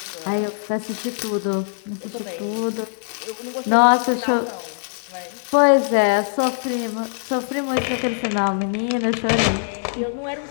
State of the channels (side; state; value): right; silent; digital silence